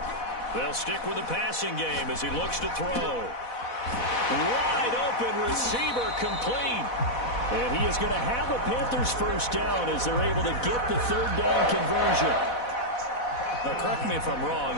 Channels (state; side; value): late; right; 4.1 ms